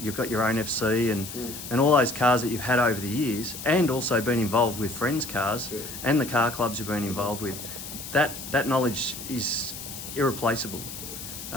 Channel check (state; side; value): noise; left; hiss, 10 dB below the sound